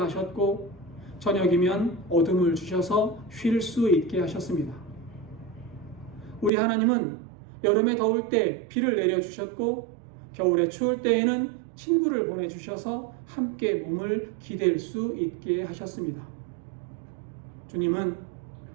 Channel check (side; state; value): left; drops out; at 6.5 s